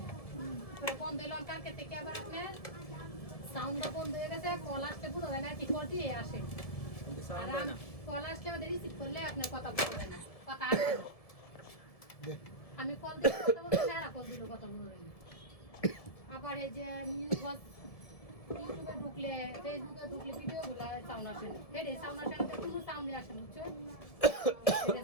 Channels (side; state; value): right; late; 1.7 ms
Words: পরে বন্ধ হইলাম কালকে থেকে আবার আপনার সাউন্ডটা বন্ধ হয়ে গেছে কল আসতে পুরো হয় না কি করতে আসে কিন্তু আর সাউন্ড হয় না কল আসলে আমাদের রিসিভ করলে আপনার কথা বলবেন না কথা আসবে না আমি কল দিয়ে কথা বলতে না কল দিলে কথা বলবেন না আবার এই যে নিউজ ইউটিউবে ঢুকলে ফেসবুকে ঢুকলে ভিডিও গুলা সাউন্ড আসে না হেডে সাউন্ড আসে না কোনো সাউন্ডই আসে না বুঝছো হেডে